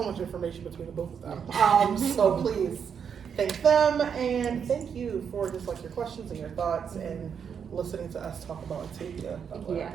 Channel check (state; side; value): quieter; left; 7.2 dB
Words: much information between the both of them. So please thank them, and thank you for just like your questions and your thoughts and listening to us talk about Octavia Butler. Yeah,